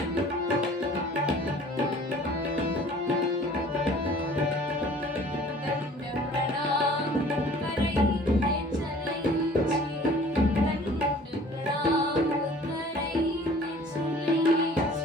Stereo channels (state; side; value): normal; both; correlation 0.50